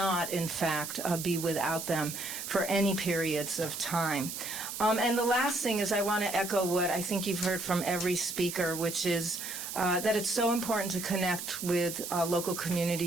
in fact, be without them for any periods of time. And the last thing is I want to echo what I think you've heard from every speaker, which is that it's so important to connect with local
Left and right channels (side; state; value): right; noise; hiss, 7 dB below the sound